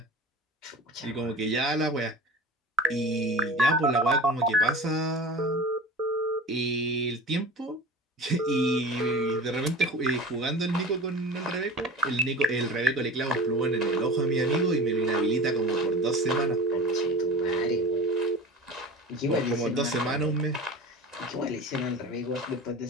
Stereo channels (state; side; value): normal; both; correlation 0.34